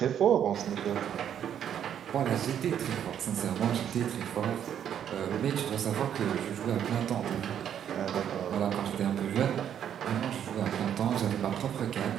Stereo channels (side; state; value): left; quieter; 9.4 dB